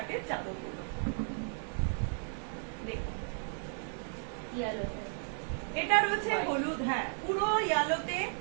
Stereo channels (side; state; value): left; silent; 55 dB below the other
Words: চাদরগুলো দেখুন। এটা রয়েছে হলুদ, হ্যাঁ পুরো ইয়ালোতে